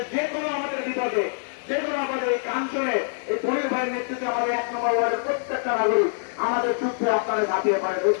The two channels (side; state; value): right; silent; digital silence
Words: যে কোনো আমাদের বিপদে, যে কোনো আমাদের এই কাঞ্চনে এই পনির ভাইয়ের নেতৃত্বে আমাদের 1 নম্বর ওয়ার্ডের প্রত্যেকটা নাগরিক আমাদের যুদ্ধে আপনারা ঝাঁপিয়ে পড়ে।